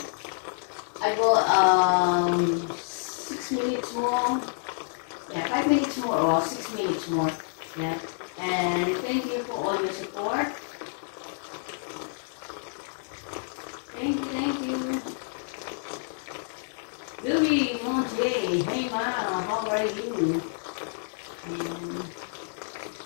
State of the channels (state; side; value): silent; right; digital silence